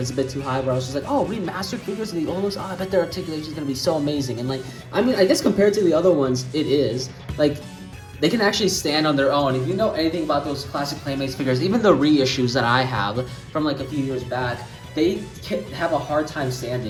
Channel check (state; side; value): identical; both; correlation 1.00